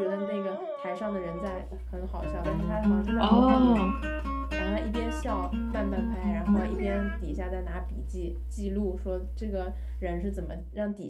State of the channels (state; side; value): identical; both; correlation 1.00